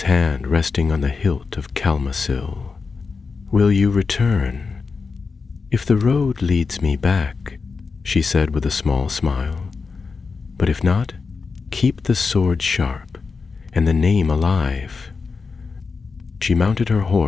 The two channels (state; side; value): quieter; right; 4.8 dB